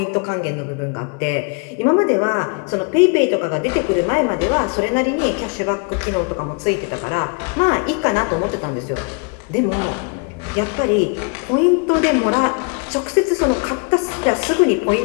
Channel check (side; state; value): right; quieter; 34.0 dB